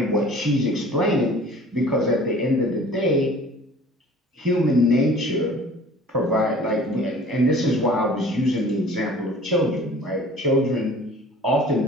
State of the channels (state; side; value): normal; both; correlation 0.47